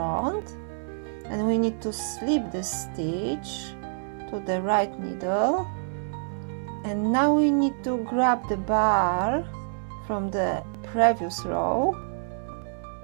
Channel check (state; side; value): silent; left; 60 dB below the other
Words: and we need to slip the stitch to the right needle, and now we need to grab the bar from the previous row,